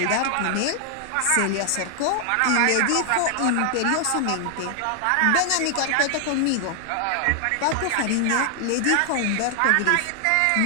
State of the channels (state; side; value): different; both; correlation 0.00